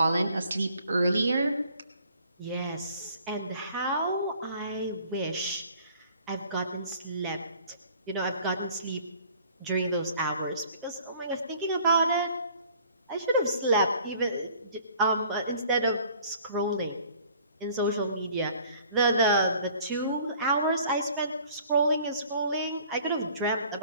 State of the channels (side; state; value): both; inverted; correlation -0.53